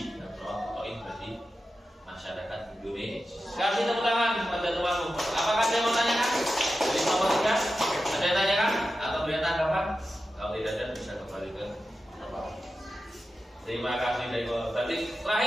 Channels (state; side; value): normal; both; correlation 0.92